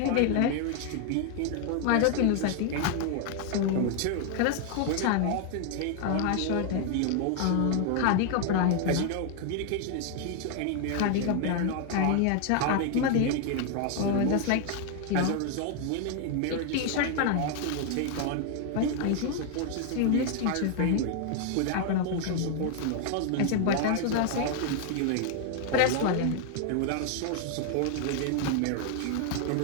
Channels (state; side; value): different; both; correlation 0.00